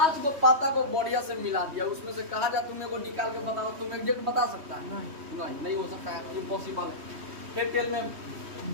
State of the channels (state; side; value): late; left; 3.2 ms